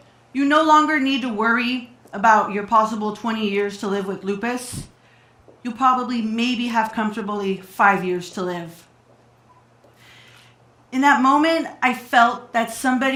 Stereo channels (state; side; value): identical; both; correlation 1.00